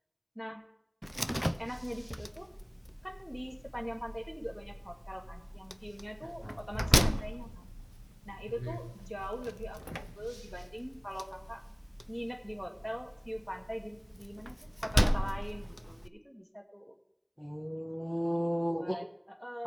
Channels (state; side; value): identical; both; correlation 1.00